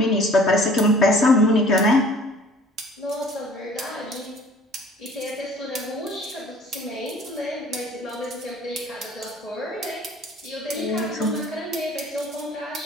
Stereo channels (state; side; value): normal; both; correlation 0.51